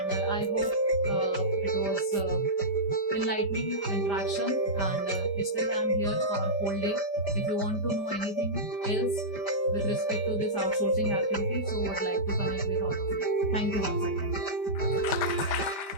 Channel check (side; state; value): right; late; 5.0 ms